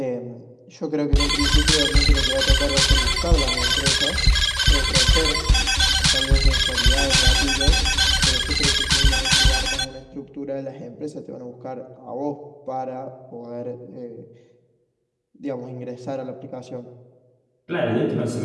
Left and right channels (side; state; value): both; identical; correlation 1.00